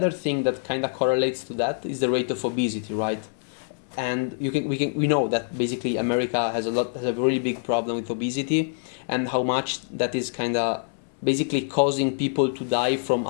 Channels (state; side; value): silent; right; 61 dB below the other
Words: thing that kind of correlates to that is the rate of obesity, right? And we know that basically America has a really big problem with obesity, and how much that is kind of basically causing people to die from